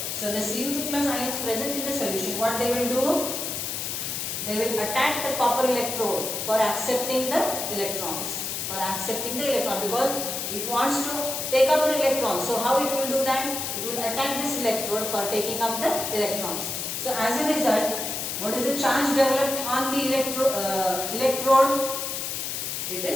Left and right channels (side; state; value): left; noise; hiss, 3 dB below the sound